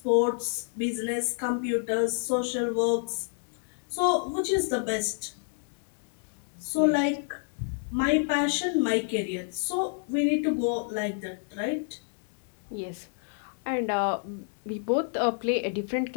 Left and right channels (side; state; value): right; silent; 59 dB below the other